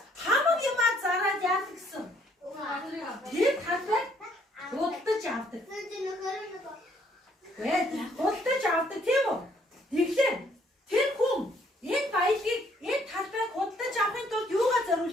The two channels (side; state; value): both; normal; correlation 0.65